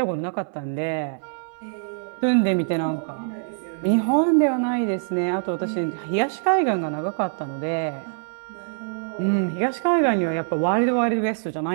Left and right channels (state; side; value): silent; left; 62 dB below the other